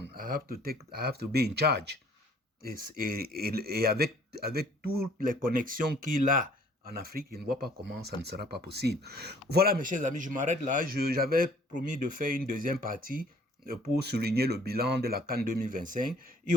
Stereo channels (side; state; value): both; normal; correlation 0.57